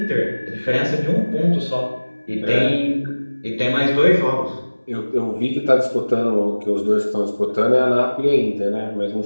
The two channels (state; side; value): inverted; both; correlation -1.00